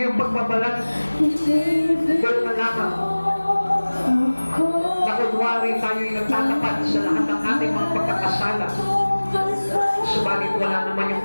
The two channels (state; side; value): inverted; both; correlation -1.00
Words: yung pagbabalat. Pero na lamang na kunwari tayo'y nagtatapat sa lahat ng ating mga pagkakasala. Subalit wala naman yung